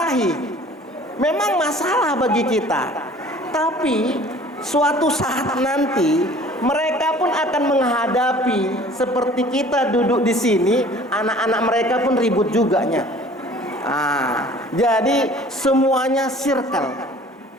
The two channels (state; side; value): normal; both; correlation 0.49